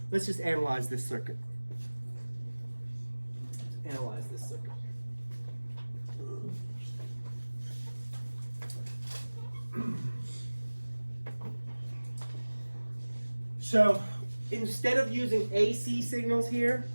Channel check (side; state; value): both; inverted; correlation -1.00